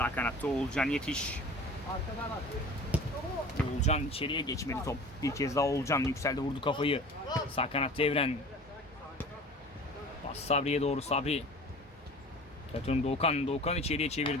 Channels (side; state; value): both; normal; correlation 0.41